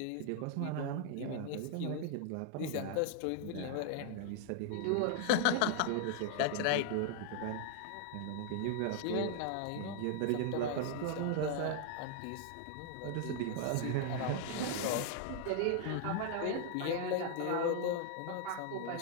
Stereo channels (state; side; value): different; both; correlation 0.00